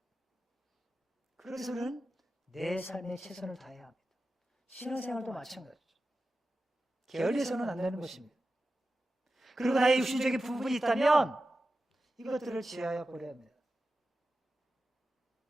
그래서 우리는 내 삶에 최선을 다해야 합니다. 신앙생활도 마찬가지죠. 게을리해서는 안 되는 것입니다. 그리고 나의 육신적인 부분이 있다면 이것들을 제하여 버려야 합니다.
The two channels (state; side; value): normal; both; correlation 0.93